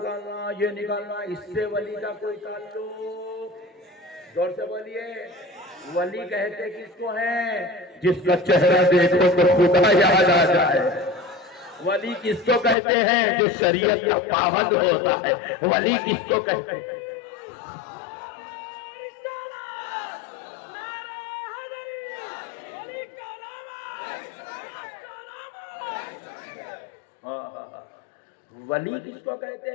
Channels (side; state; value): right; drops out; at 12.8 s